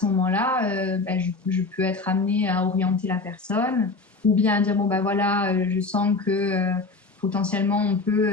moment-là, je peux être amenée à orienter la personne ou bien à dire, je sens que potentiellement, on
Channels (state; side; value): quieter; right; 3.7 dB